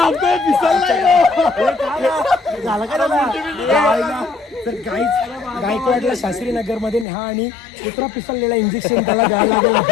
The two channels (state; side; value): drops out; right; at 7.1 s